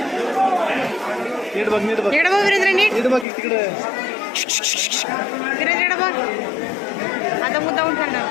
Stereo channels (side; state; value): right; drops out; at 3.2 s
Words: नीट बघ नीट बघ वीरेंद्र नीट नीट बघ तिकडे. वीरेंद्र बघ आता मुद्दाहून खाणार